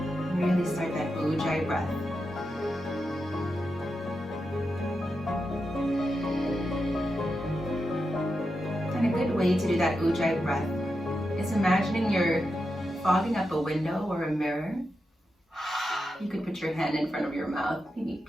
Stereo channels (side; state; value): both; normal; correlation 0.88